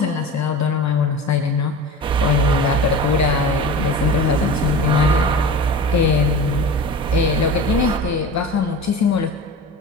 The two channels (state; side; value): normal; both; correlation 0.33